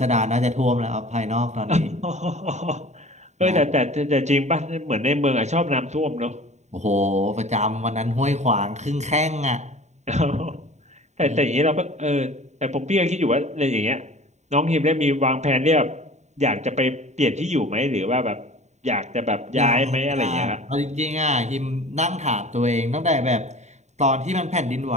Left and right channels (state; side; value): late; left; 0.33 ms